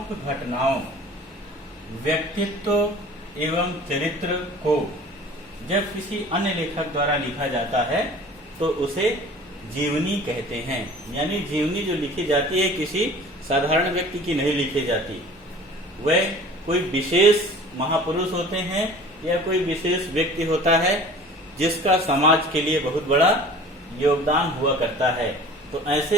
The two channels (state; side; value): normal; both; correlation 0.44